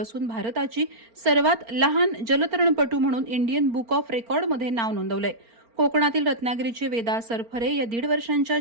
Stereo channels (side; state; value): left; late; 4.4 ms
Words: असून भारताची सर्वात लहान जलतरणपटू म्हणून इंडियन बुक ऑफ रेकॉर्डमध्ये नाव नोंदवलंय. कोकणातील रत्नागिरीचे वेदा सरफरे या 1.5